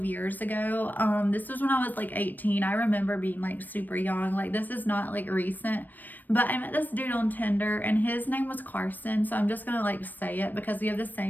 years ago. This was when I was 18. I remember being super young. This is not recent, but I met this dude on Tinder and his name was Carson. So I'm just gonna say it because we have the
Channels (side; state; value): right; late; 0.088 ms